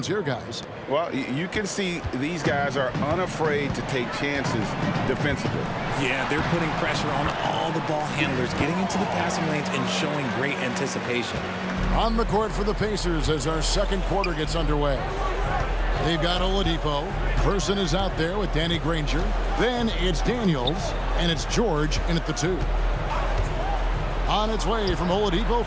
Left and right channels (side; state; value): both; identical; correlation 1.00